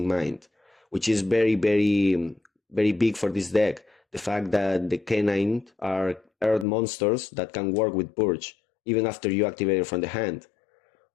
mind, which is very, very, very big for this deck. The fact that the K9 are earth monsters that can work with Purge, even after you activate it from the hand.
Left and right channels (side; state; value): right; drops out; at 6.7 s